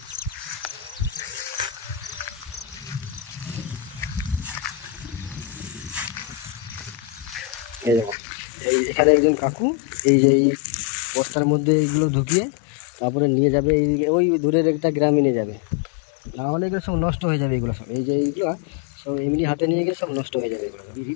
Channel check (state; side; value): drops out; right; at 8.2 s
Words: এই দেখো, এখানে একজন কাকু এই বস্তার মধ্যে এগুলো ঢুকিয়ে তারপরে নিয়ে যাবে, ওই দূরের একটা গ্রামে নিয়ে যাবে। না হলে এগুলো সব নষ্ট হয়ে যাবে। এগুলো সব এইগুলো সব এমনি হাতে নিয়ে গেলে সব নষ্ট হয়ে যাবে এগুলো সব।